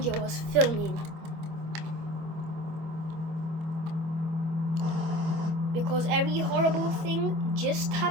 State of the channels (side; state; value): left; late; 25 ms